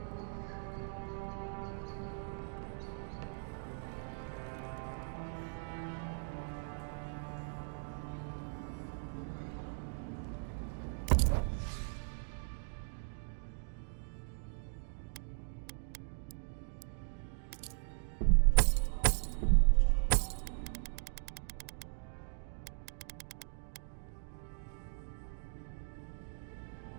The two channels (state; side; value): silent; left; digital silence